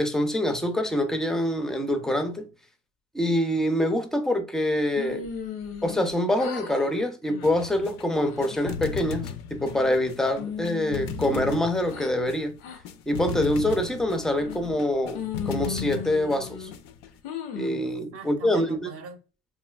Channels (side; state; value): both; normal; correlation 0.72